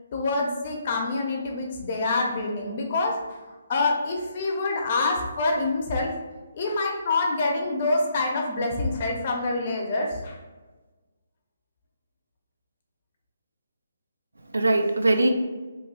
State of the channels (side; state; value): both; inverted; correlation -0.75